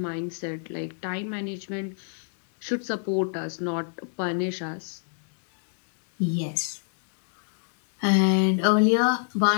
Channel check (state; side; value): silent; right; 60 dB below the other